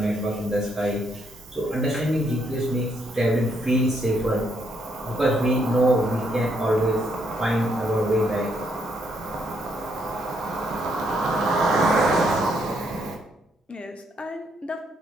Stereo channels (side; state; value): both; normal; correlation 0.74